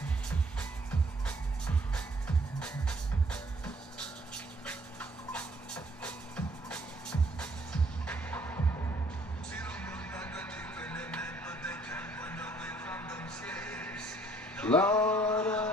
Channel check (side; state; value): both; normal; correlation 0.62